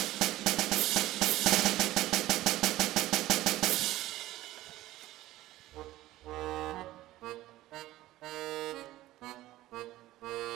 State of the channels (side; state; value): left; quieter; 16.0 dB